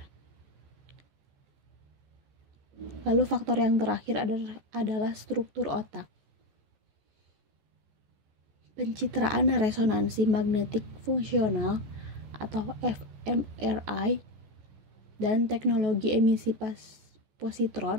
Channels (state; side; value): late; left; 14 ms